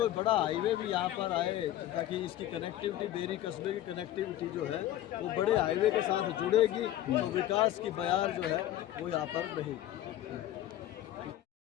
बड़ा हाईवे भी यहाँ पर आए ताकि इसकी कनेक्टिविटी, बेरी कस्बे की कनेक्टिविटी जो है वो बड़े हाईवे के साथ जुड़ेगी तो विकास की बयार जो है वो यहाँ पर रहेगी।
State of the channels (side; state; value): right; quieter; 13.2 dB